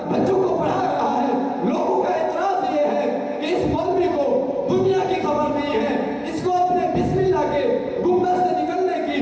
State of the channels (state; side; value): identical; both; correlation 1.00